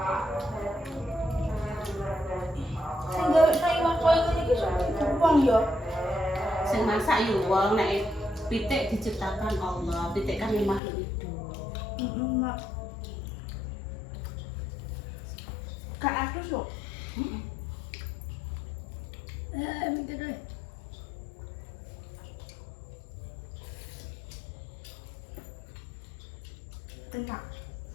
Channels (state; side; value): drops out; right; at 10.8 s